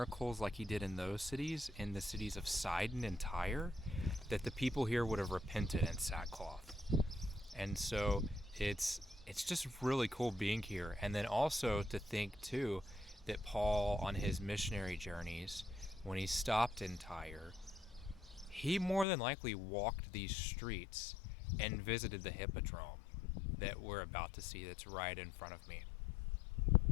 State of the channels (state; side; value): drops out; right; at 19.1 s